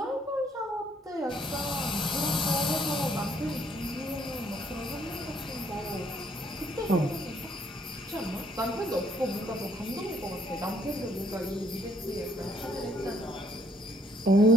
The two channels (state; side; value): normal; both; correlation 0.67